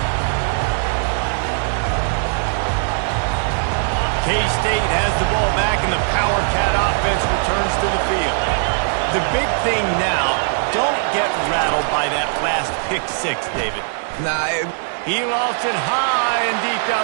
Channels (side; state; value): left; silent; 66 dB below the other